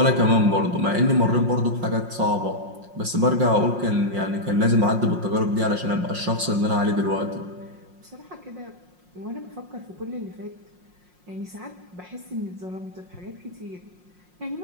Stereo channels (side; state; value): left; late; 5.6 ms